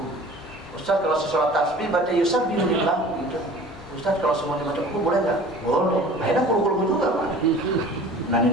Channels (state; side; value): normal; both; correlation 0.44